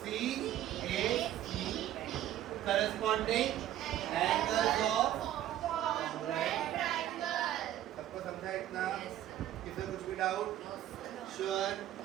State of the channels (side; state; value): left; quieter; 12.5 dB